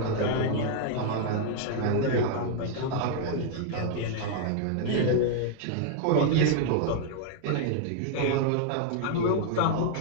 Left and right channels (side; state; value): both; different; correlation 0.00